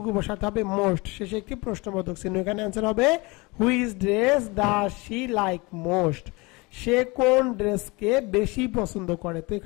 বসাতে হবে মোস্ট, শেষে একটি প্রশ্নবোধক চিহ্ন। এখানে অ্যান্সার হবে which dress does she like most, সে কোন ড্রেসকে বেশি পছন্দ করে। তো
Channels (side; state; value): right; quieter; 25.5 dB